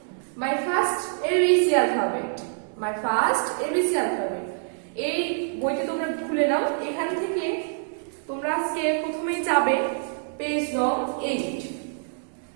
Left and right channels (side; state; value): left; silent; digital silence